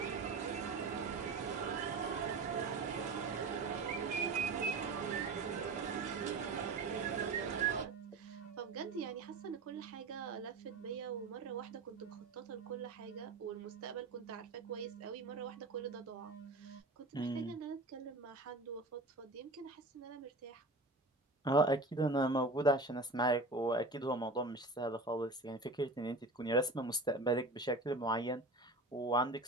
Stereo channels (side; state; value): left; quieter; 3.0 dB